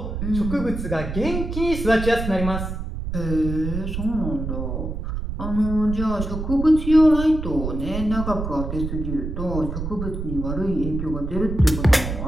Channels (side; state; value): right; noise; rumble, 5 dB below the sound